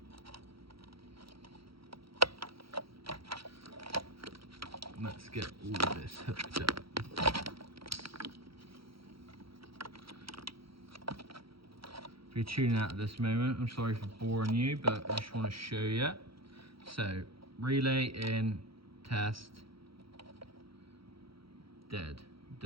let's get all of this hooked up. If you're tuning out at this moment, I'm sorry for boring you, but I just want to show you. So, relay in, test, dead.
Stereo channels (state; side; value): late; left; 0.75 ms